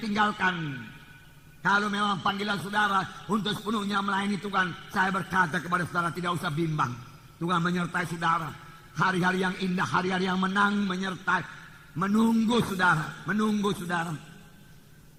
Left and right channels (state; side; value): identical; both; correlation 1.00